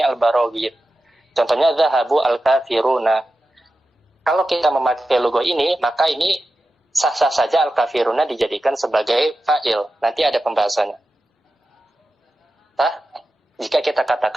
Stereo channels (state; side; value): normal; both; correlation 0.92